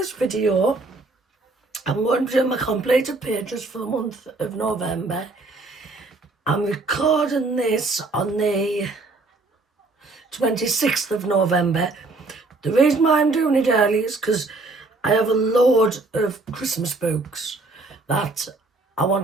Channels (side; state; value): left; quieter; 3.4 dB